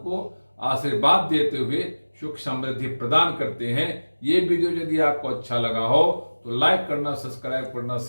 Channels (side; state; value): both; inverted; correlation -1.00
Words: आशीर्वाद देते हुए सुख समृद्धि प्रदान करते हैं। ये वीडियो यदि आपको अच्छा लगा हो तो लाइक करना, सब्सक्राइब करना,